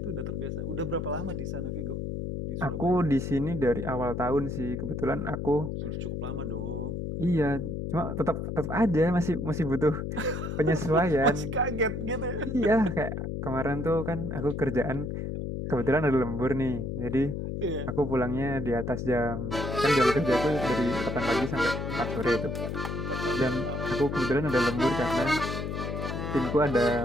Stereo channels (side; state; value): left; noise; hum, 4 dB below the sound